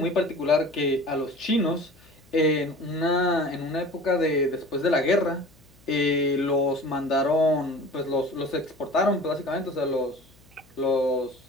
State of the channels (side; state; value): left; noise; hum, 29 dB below the sound